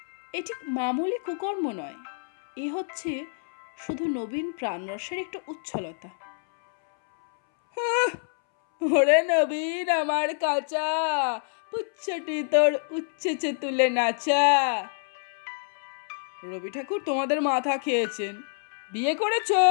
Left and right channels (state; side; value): silent; right; 60 dB below the other